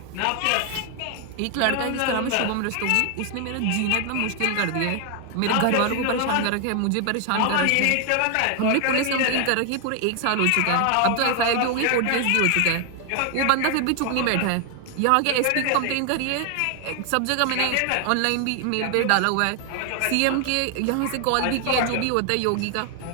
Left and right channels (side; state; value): both; different; correlation 0.00